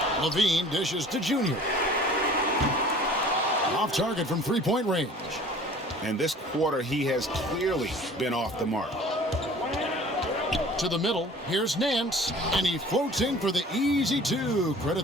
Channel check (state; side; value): normal; both; correlation 0.47